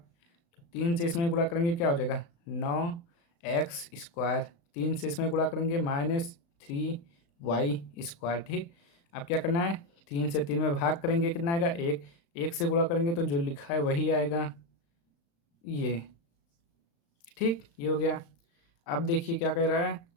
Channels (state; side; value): late; right; 35 ms